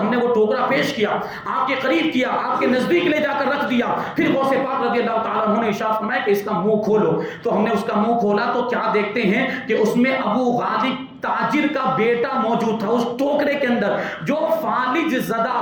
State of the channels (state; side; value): identical; both; correlation 1.00